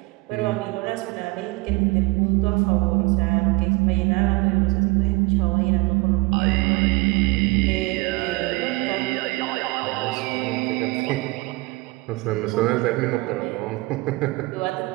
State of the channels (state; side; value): quieter; left; 23.9 dB